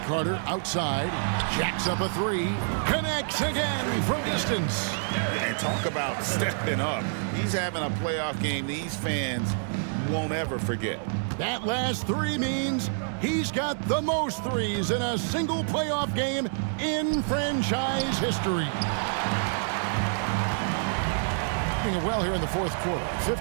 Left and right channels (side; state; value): left; silent; 58 dB below the other